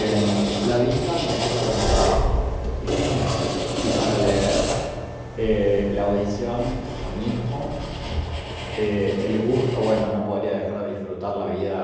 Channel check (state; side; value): identical; both; correlation 1.00